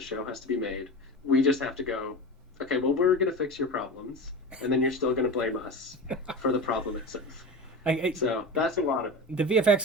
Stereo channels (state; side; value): normal; both; correlation 0.27